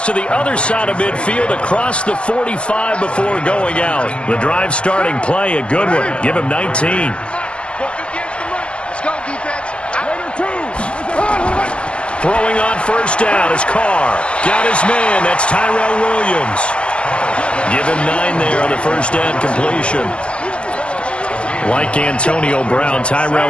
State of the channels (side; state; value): right; late; 0.053 ms